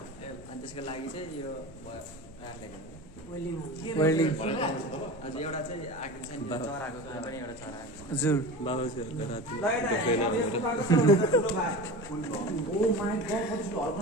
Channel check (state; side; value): noise; left; rumble, 20 dB below the sound